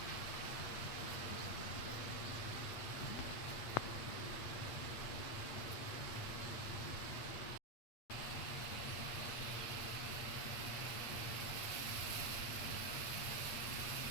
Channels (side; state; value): right; late; 8.5 ms